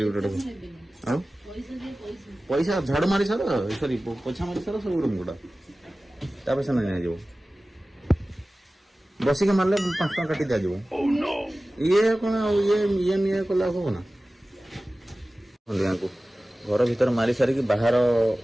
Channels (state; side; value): normal; both; correlation 0.96